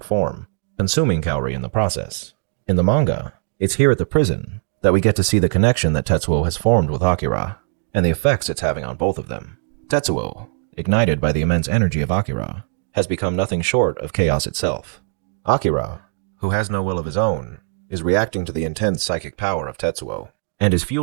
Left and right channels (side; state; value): left; silent; digital silence